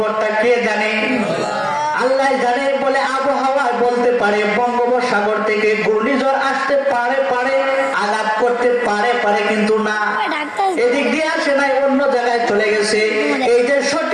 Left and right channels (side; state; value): both; identical; correlation 1.00